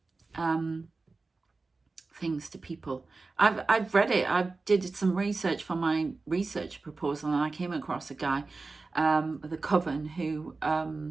things to people. I've read it. I did some research for my research proposal, and I came across a guy, the coven, who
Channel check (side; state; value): left; quieter; 3.8 dB